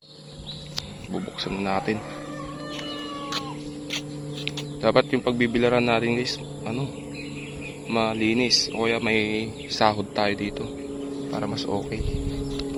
Bubuksan natin. Dapat yung pagbibilaran natin guys, malinis. O kaya may sahod tayo dito para mas okay.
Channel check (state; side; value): identical; both; correlation 1.00